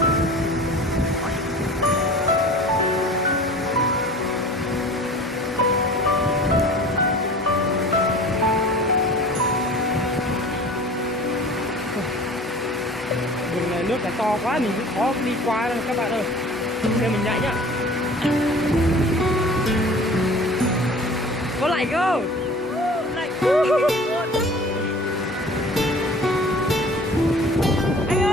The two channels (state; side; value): normal; both; correlation 0.44